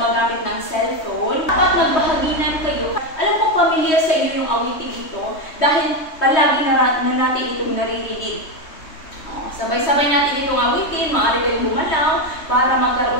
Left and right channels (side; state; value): right; late; 3.2 ms